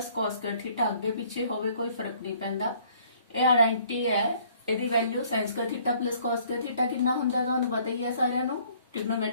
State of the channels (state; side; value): inverted; both; correlation -0.60